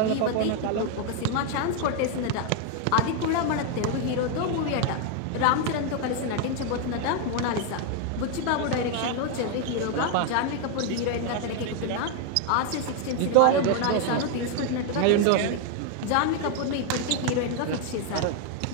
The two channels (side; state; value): both; different; correlation 0.01